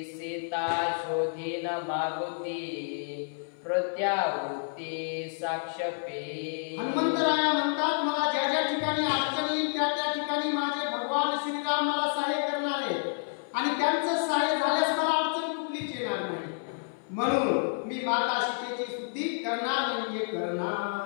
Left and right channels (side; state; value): right; silent; 58 dB below the other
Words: सीता शोधीन मागुती प्रत्यावृत्ती साक्षपे. हनुमंतराया म्हणतात, मला ज्या ज्या ठिकाणी अडचण येईल त्या त्या ठिकाणी माझे भगवान श्रीराम मला सहाय्य करणार आहे आणि त्यांचं सहाय्य झाल्यास मला अडचण कुठलीच येणार नाही, म्हणून मी माता सीतेची शुद्धी करणार म्हणजे